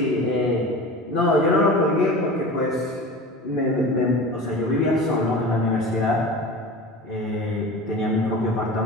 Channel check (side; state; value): both; normal; correlation 0.34